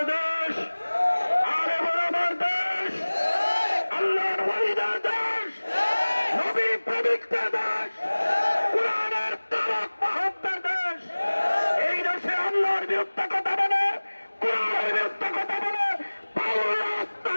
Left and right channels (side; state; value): both; inverted; correlation -1.00